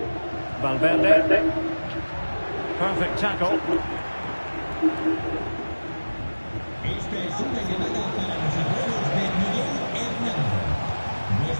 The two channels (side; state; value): both; inverted; correlation -1.00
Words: Valverde. Perfect tackle. Esta es una llamada para los abuelos de Miguel Hernández.